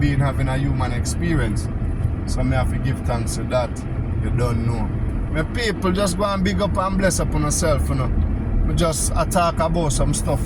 having a human experience. So me have to give thanks to that. You don't know. My people, just go and big up and bless up on yourself, We just talk about some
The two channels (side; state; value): both; identical; correlation 1.00